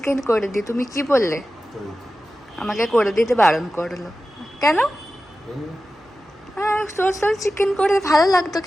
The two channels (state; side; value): normal; both; correlation 0.94